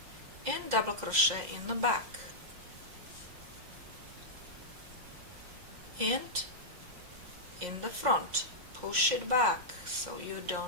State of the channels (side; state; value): left; late; 5.6 ms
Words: and double crochet in the back, and in the front push it back so you